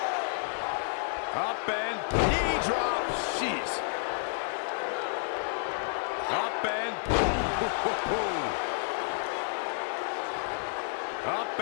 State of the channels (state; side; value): silent; right; digital silence